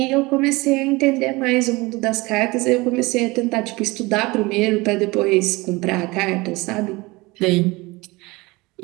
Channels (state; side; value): quieter; left; 23.0 dB